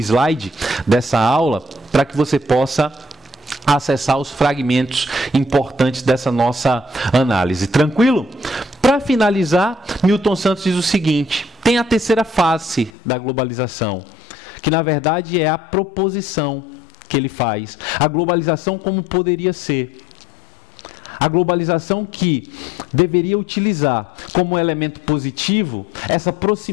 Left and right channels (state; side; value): drops out; right; at 12.9 s